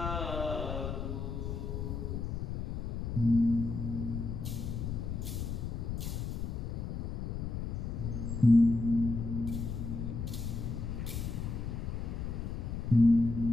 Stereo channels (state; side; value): noise; left; rumble, 3 dB below the sound